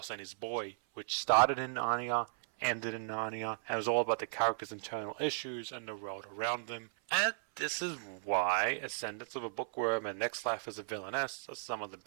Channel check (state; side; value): silent; left; 54 dB below the other